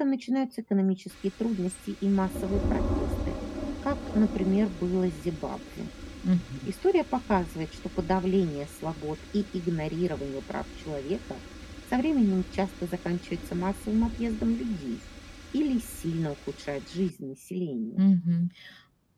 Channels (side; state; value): both; identical; correlation 1.00